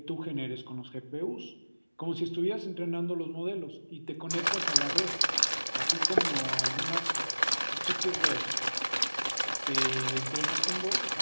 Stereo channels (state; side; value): inverted; both; correlation -1.00